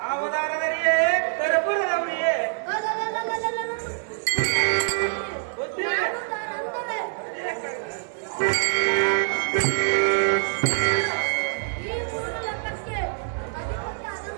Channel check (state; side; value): silent; left; 62 dB below the other